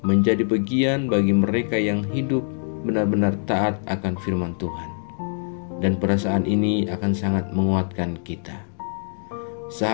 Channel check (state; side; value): silent; right; digital silence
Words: menjadi bagian bagi mereka yang hidup benar-benar taat akan firman Tuhan. Dan perasaan ini akan sangat menguatkan kita.